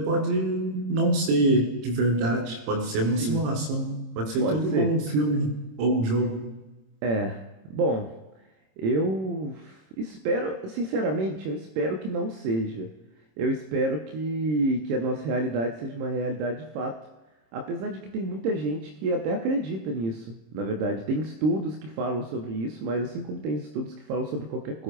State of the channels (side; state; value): left; late; 26 ms